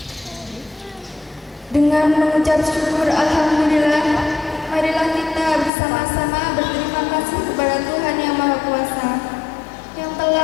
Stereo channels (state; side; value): drops out; right; at 5.7 s